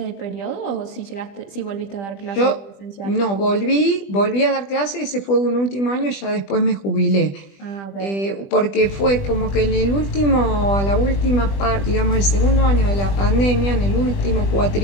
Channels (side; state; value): right; late; 20 ms